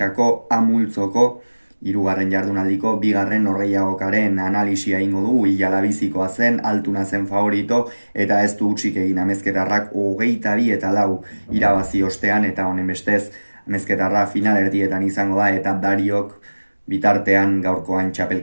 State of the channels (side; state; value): both; inverted; correlation -1.00